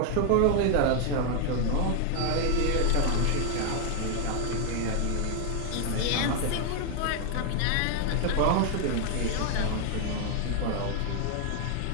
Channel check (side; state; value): both; different; correlation 0.00